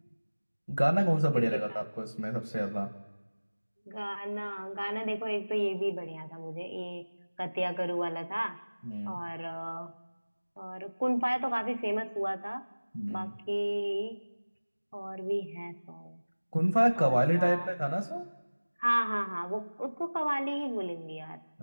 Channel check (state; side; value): inverted; both; correlation -1.00